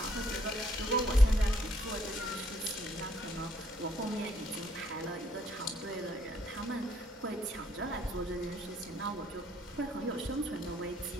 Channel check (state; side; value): normal; both; correlation 0.67